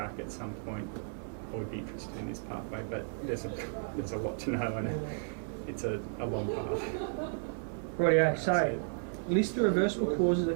at some point I would be interested in this pathway, but there's a lot to know, and it's a long path. Rightio, so list the reversible causes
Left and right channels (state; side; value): silent; left; digital silence